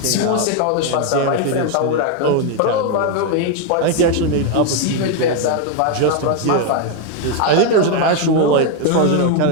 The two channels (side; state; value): both; different; correlation 0.01